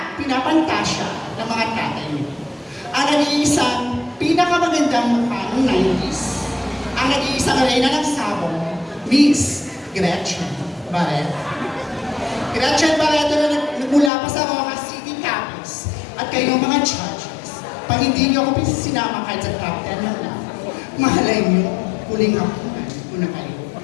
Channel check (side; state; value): right; drops out; at 14.1 s